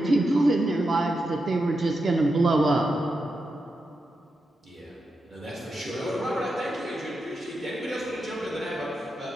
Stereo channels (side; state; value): both; normal; correlation 0.87